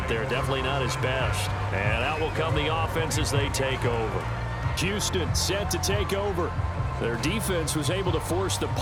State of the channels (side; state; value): both; identical; correlation 1.00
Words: there. Definitely not his best. And out will come the offense as they take over. Houston set to take over. Their defense was able to force the